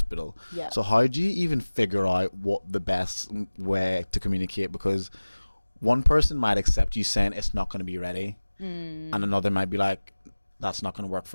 Yeah. So how do you even figure out what the best way to communicate? Because one person might accept you saying it's not going to be ready, and another might be like, that's not going to work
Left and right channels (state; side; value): inverted; both; correlation -1.00